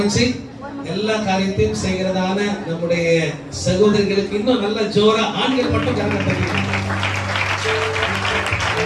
எல்லா காரியத்தையும் செய்கிறதான நம்முடைய சகோதரிகளுக்கு இன்னும் நல்ல ஜோரா ஆண்கள் மட்டும் கவனம் தெரியும்.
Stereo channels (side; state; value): both; identical; correlation 1.00